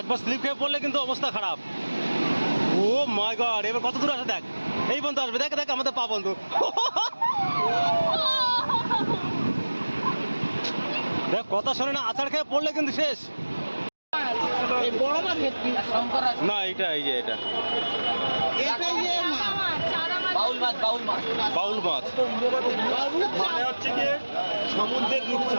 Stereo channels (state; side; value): inverted; both; correlation -1.00